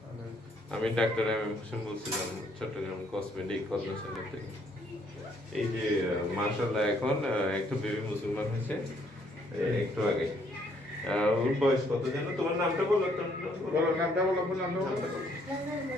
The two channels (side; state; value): both; normal; correlation 0.67